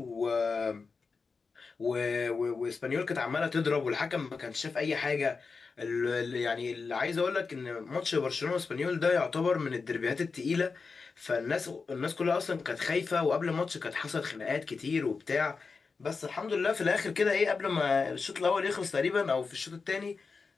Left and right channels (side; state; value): right; quieter; 4.7 dB